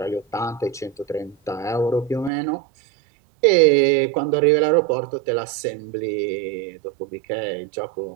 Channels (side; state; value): left; drops out; at 2.3 s